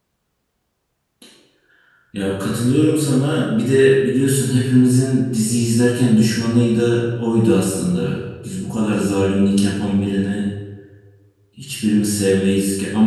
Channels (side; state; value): both; identical; correlation 1.00